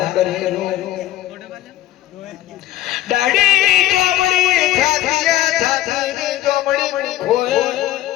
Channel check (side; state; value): right; quieter; 14.3 dB